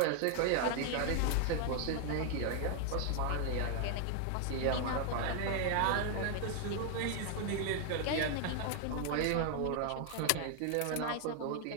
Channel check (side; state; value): both; different; correlation 0.00